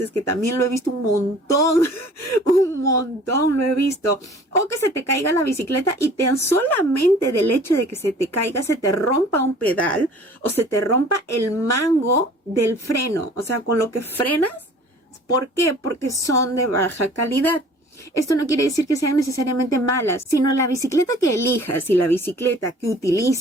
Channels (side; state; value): both; normal; correlation 0.49